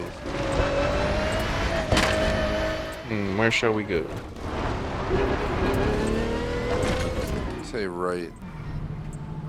Where shall we go? Say right.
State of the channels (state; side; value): identical; both; correlation 1.00